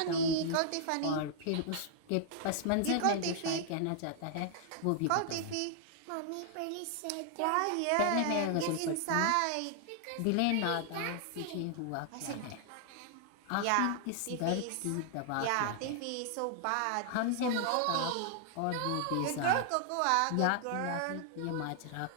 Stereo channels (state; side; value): different; both; correlation -0.01